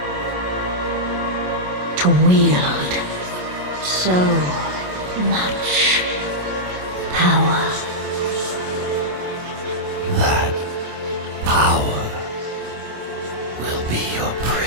To wield so much power. That power will be your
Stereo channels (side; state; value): left; late; 27 ms